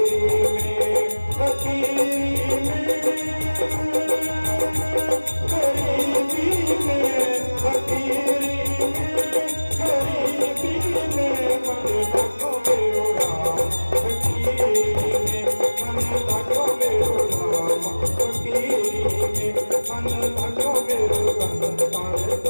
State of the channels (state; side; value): inverted; both; correlation -1.00